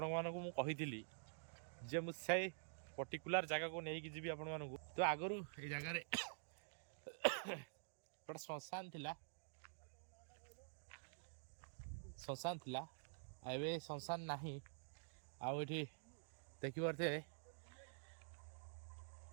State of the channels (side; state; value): left; silent; digital silence